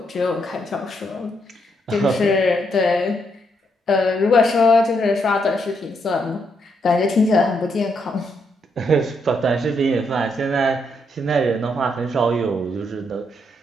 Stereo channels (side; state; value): both; normal; correlation 0.77